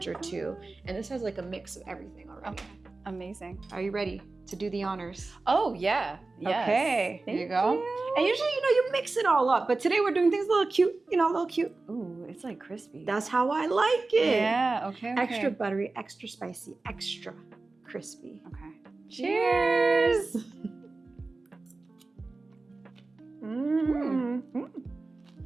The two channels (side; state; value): left; quieter; 3.5 dB